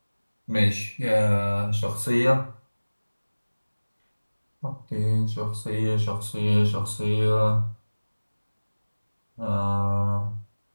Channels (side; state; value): both; inverted; correlation -1.00